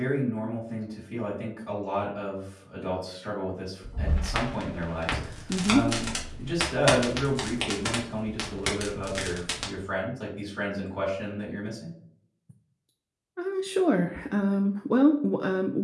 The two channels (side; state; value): both; identical; correlation 1.00